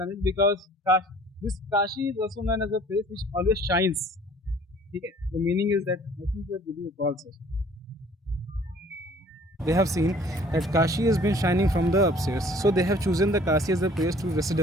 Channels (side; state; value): both; normal; correlation 0.53